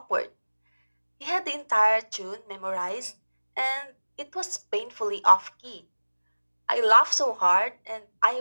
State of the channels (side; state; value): both; inverted; correlation -1.00